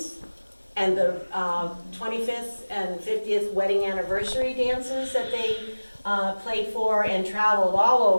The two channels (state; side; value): inverted; both; correlation -1.00